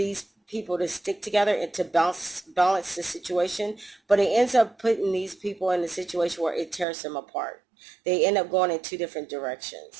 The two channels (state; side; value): drops out; left; at 6.9 s